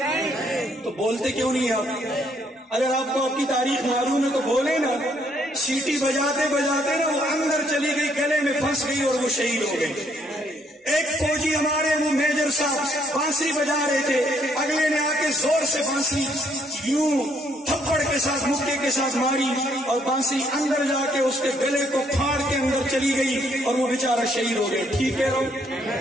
تو بولتے کیوں نہیں آپ؟ اگر آپ کو آپ کی تاریخ معلوم ہے تو بولے نا۔ سیٹی بجاتے بجاتے نا وہ اندر چلی گئی، گلے میں پھنس گئی اور وہ شہید ہو گئی۔ ایک فوجی ہمارے وہ میجر صاحب بانسری بجا رہے تھے، اگلے نے آ کے زور سے بانسری یوں تھپڑ کے ساتھ مکے کے ساتھ ماری اور بانسری اندر جا کے اس کے گلے کو پھاڑ کے اندر چلی گئی اور وہ بیچارہ شہید ہو گیا۔ ٹھیک ہے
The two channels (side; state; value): both; normal; correlation 0.69